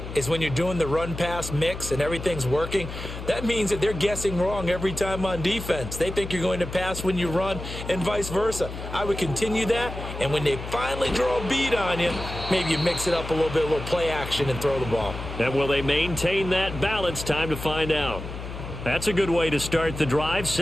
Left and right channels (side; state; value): left; noise; hum, 9 dB below the sound